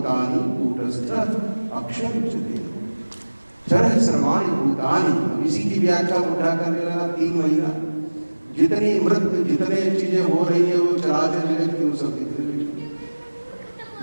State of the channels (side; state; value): both; inverted; correlation -1.00